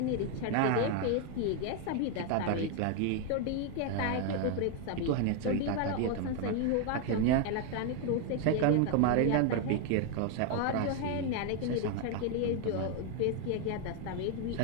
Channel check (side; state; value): both; different; correlation 0.01